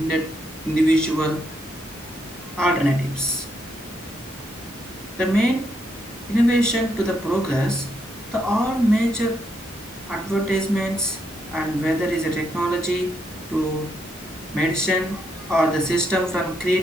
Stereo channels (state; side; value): normal; both; correlation 0.77